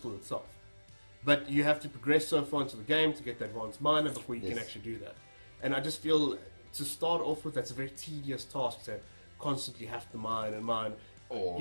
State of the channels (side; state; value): both; inverted; correlation -1.00